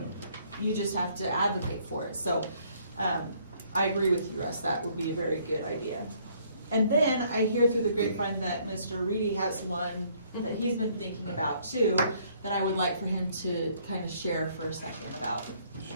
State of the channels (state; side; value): inverted; both; correlation -0.64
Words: You just have to advocate for it. So I agree with you, Russ, that would be a very good idea. And then I hear through the grapevine that Mr. Reedy has one that he's been thinking about too, that I would like for him to kind of share for a second about.